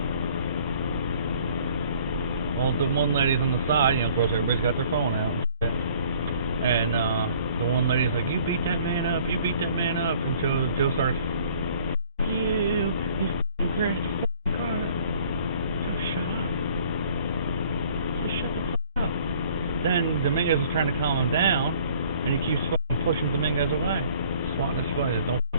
Well, the one lady's on the side, you know, of course everybody's got their phone out and shit. And the one lady's like, you beat that man up, and Joe starts, you f***ing crashed the f***ing car. Joe, shut up. Just shut the f*** up. Then Dominguez is trying to calm him down, and he keeps fucking pushing Dominguez away. Swatting his face, don't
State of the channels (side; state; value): both; inverted; correlation -0.56